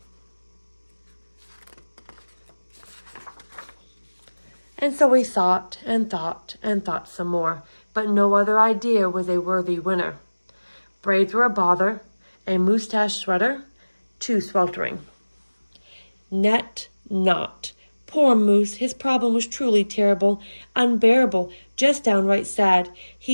And so he thought and thought and thought some more, but no other idea was a worthy winner. Braids were a bother, a moosetache sweater, too sweltering. Net not. Poor Moose, his problem was truly terrible, unbearable, just downright sad.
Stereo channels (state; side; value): inverted; both; correlation -1.00